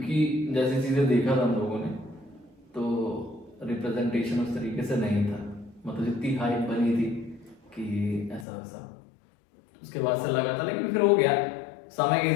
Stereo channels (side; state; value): right; drops out; at 8.5 s